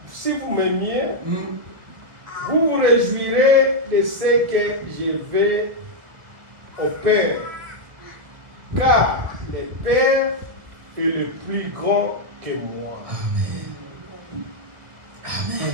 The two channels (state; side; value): late; left; 1.5 ms